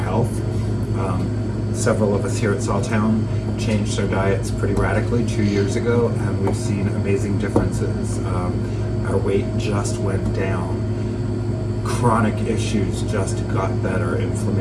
Several of us here at SawTown changed our diets pretty radically 2 years ago, and we've seen amazing differences. Our weight just went down. Chronic issues just got better.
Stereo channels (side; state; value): both; identical; correlation 1.00